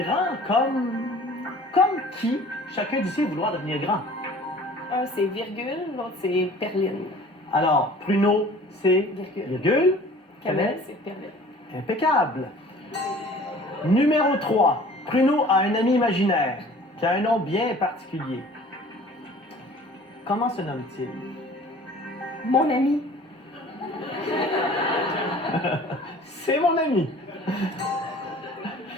comme qui? Chacun d'ici vouloir devenir grand. Un, c'est virgule, l'autre, c'est perline. Alors, Pruneau, c'est virgule. Cannelle, c'est perline. Impeccable. Numéro 3. Pruneau a un ami imaginaire qui a un nom bien particulier. Comment se nomme-t-il? Mon ami. C'est mon ami.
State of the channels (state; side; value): normal; both; correlation 0.48